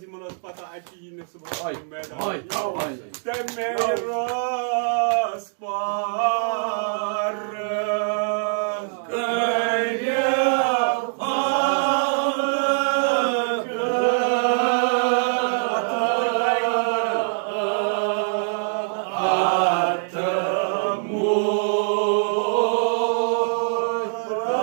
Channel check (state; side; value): silent; left; digital silence